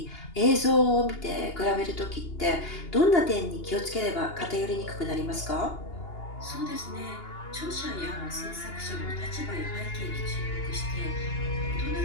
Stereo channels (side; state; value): right; late; 2.8 ms